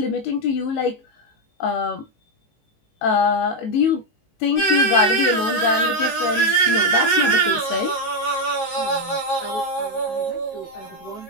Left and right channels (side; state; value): right; late; 18 ms